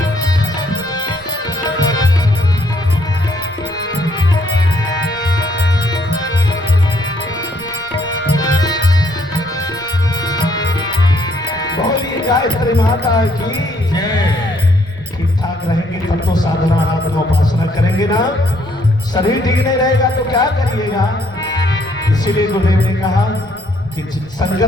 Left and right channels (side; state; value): right; noise; rumble, 24 dB below the sound